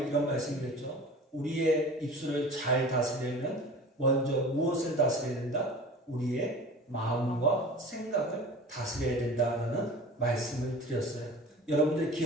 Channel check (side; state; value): both; normal; correlation 0.39